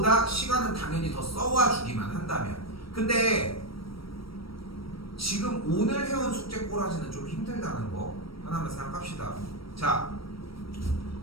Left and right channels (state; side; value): late; right; 0.75 ms